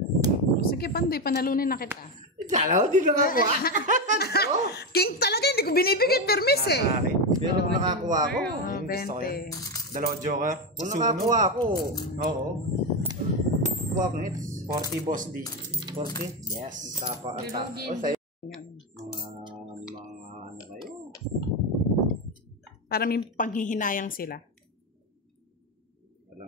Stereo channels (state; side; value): normal; both; correlation 0.11